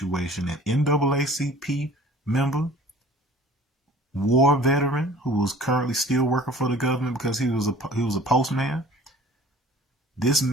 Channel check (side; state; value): both; normal; correlation 0.48